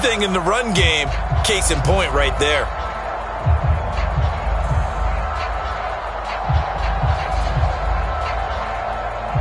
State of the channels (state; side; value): identical; both; correlation 1.00